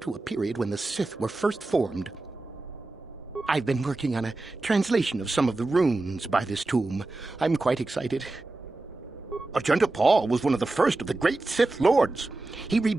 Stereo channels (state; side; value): quieter; left; 3.1 dB